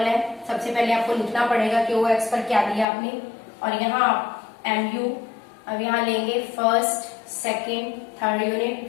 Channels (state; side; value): drops out; right; at 2.9 s